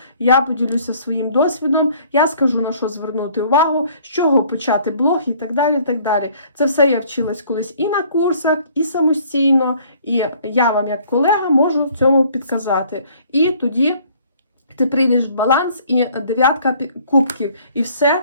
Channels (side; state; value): both; inverted; correlation -0.58